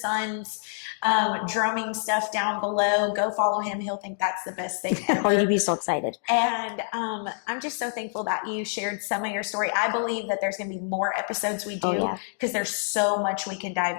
drumming stuff down below. Go follow him. He'll think that's the best thing ever. Oh, you'd be so excited. And I'm just so thankful that you shared some of your story. I believe that there's going to be more episodes we do because there's so much we can dive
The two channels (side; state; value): right; silent; digital silence